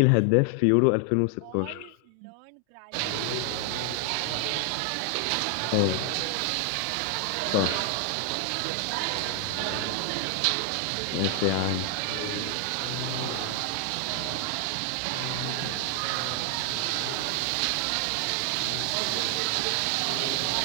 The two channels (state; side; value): different; both; correlation 0.00